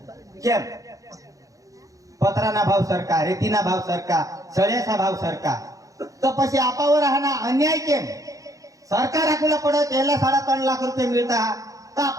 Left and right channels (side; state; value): left; late; 0.16 ms